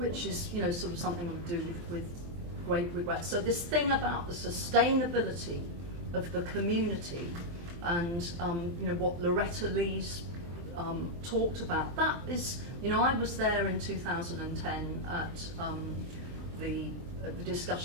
is sort of something I would do with great regret. So this thing about the sustainability of the community and you know, what Loretta Lee's talked about, that is, you know, I was there in 2010 at the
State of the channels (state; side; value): late; left; 23 ms